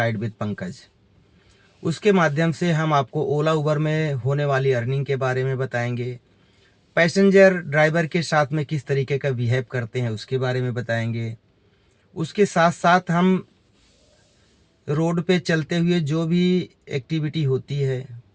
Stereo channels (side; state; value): both; identical; correlation 1.00